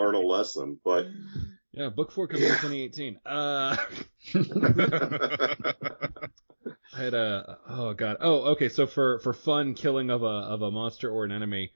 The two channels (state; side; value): inverted; both; correlation -1.00